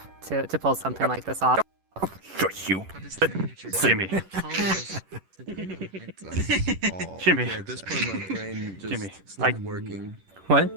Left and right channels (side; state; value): left; late; 10 ms